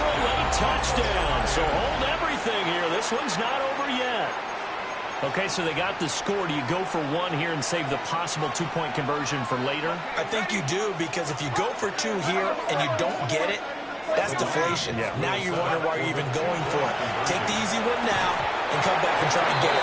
a late touchdown. So hold everything here. This one's not over yet. Okay, so they got the score. Do you go for one here and save the possible 2-point conversion for later? I think you do, because if you go for 2 here and you don't get it, that's deflation. Yeah. Now you wonder why you're even going for it. Take the easy one now and come back and try and get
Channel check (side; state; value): both; identical; correlation 1.00